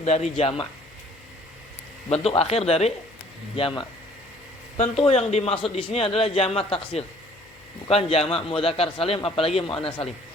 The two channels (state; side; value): noise; left; hum, 28 dB below the sound